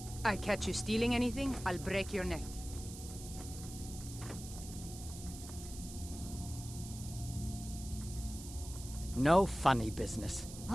I catch you stealing anything, I'll break your neck. No funny business.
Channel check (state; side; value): noise; right; hiss, 13 dB below the sound